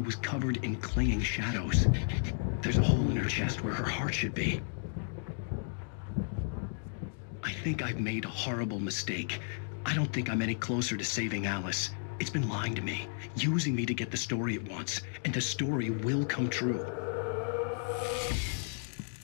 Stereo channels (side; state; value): right; silent; digital silence